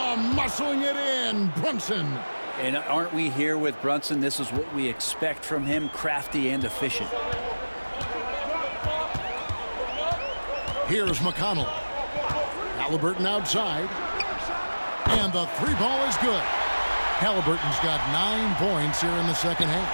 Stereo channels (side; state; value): both; inverted; correlation -1.00